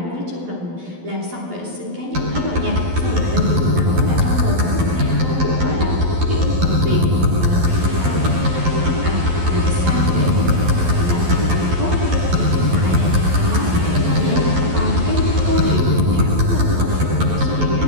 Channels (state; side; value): late; left; 12 ms